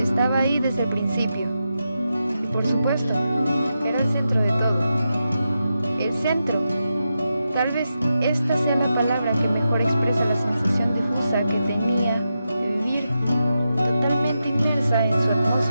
Estaba ahí desde el principio. Y por supuesto, era el centro de todo. El centro. Tal vez esta sea la palabra que mejor expresa la sensación difusa que tenía de vivir totalmente inmersa en su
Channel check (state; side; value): inverted; both; correlation -0.88